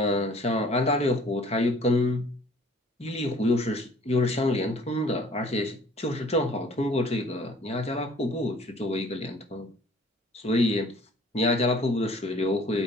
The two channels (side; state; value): both; normal; correlation 0.53